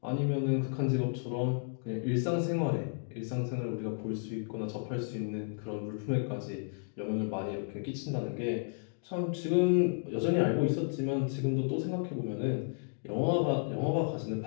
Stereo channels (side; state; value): right; silent; digital silence